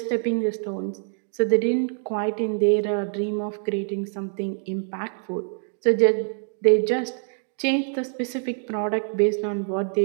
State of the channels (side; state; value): left; silent; digital silence